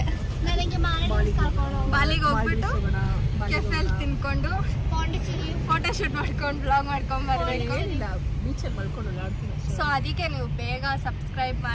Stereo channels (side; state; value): both; identical; correlation 1.00